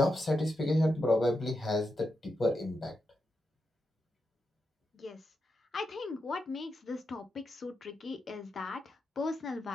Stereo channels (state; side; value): normal; both; correlation 0.86